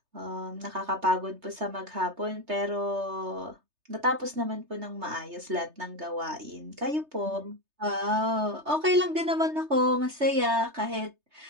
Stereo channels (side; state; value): left; late; 3.3 ms